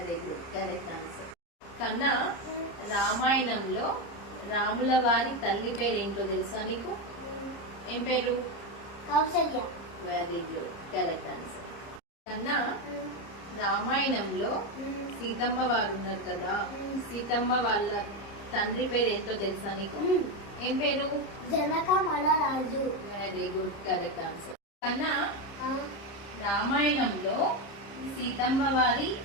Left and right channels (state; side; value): late; right; 30 ms